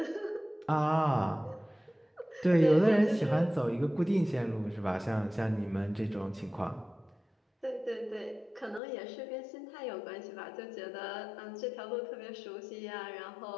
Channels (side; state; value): right; drops out; at 8.8 s